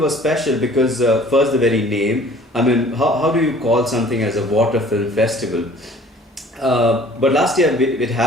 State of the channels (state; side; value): normal; both; correlation 0.51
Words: special because first the very name. I mean, how do you call something as a water film festival? But last year it